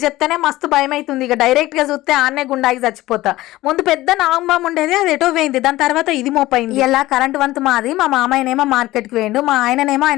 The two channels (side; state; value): right; quieter; 17.1 dB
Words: చెప్తేనే మస్తు భయం అవుతుంది. ఇక డైరెక్ట్ గా చూస్తే ఆన్నే గుండాకి చచ్చిపోతా. ముందు పెద్ద నాగంబాం ఉండేది, అది ఎటో పోయింది. దాని తర్వాత ఇది మోపైంది. ఇలా కరెంట్ వంతు మాది. మా మామయ్యనేమో మార్కెట్కి వేయండు, మా ఆయననేమో